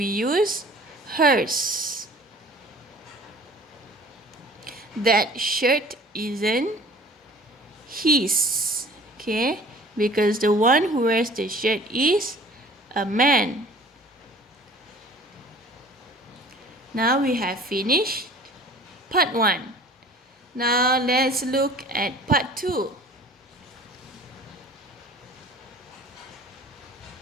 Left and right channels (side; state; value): both; normal; correlation 0.48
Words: use hers. That shirt isn't his. Okay? Because the one who wears the shirt is a man. Now we have finished part 1. Now let's look at part 2.